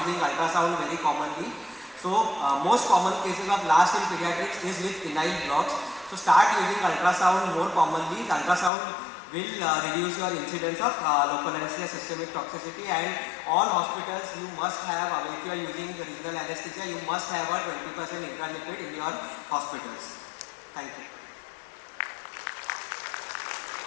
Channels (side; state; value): right; drops out; at 8.7 s